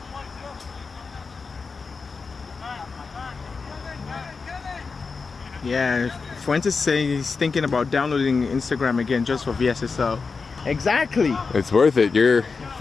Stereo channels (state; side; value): quieter; right; 4.7 dB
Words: Yeah, Fuentes saying he's thinking about downloading Instagram again just for VSSL. Exactly. It's worth it. You're